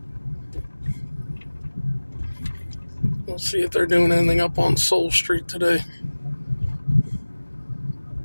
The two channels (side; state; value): both; inverted; correlation -1.00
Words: We'll see if they're doing anything up on Soul Street today.